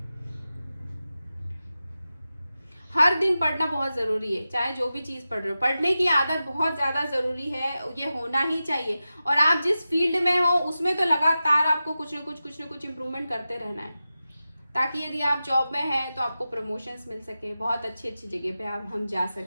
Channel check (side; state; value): both; inverted; correlation -0.93